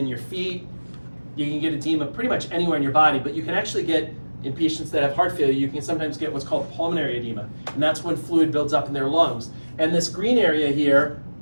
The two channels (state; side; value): inverted; both; correlation -1.00